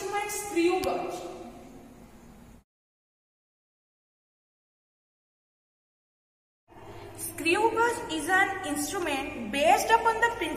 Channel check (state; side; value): identical; both; correlation 1.00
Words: screw gauge. Screw gauge is an instrument based upon the